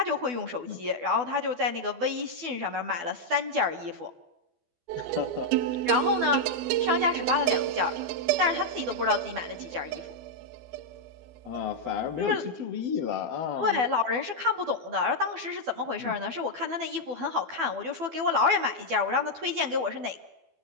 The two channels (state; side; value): late; left; 12 ms